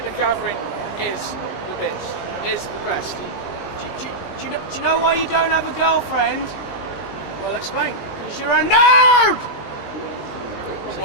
the Gathering is the best. Is the best. Do you know why you don't have a girlfriend? Well, explain. Because you're a nerd.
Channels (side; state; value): right; late; 19 ms